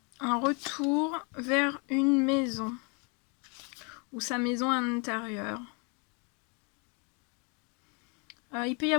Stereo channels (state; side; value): quieter; right; 34.3 dB